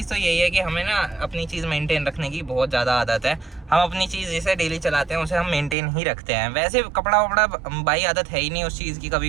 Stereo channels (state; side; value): drops out; left; at 5.8 s